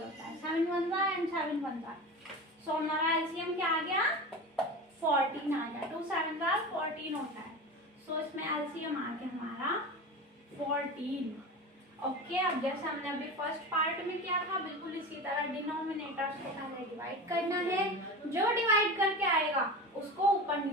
है, 7 1 एंड 7 1 जा। सो हमारा एलसीएम क्या आ गया, 14 आ गया, 2 7 14 होता है। सो इसमें एलसीएम आ गया हमारा 14। ओके, अब जैसे हमने अभी फर्स्ट पार्ट में किया था, बिल्कुल इसी तरह डिनोमिनेटर्स को पहले डिवाइड करना है, जो डिवाइड करके आएगा उसको ऊपर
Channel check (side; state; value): both; normal; correlation 0.29